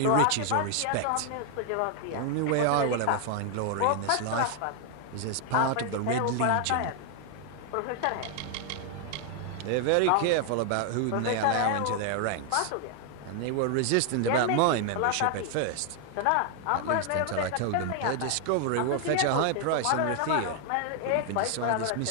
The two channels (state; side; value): different; both; correlation 0.00